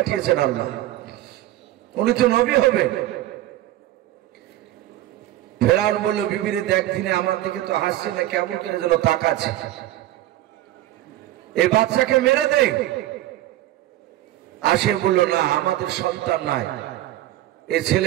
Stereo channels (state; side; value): quieter; left; 14.8 dB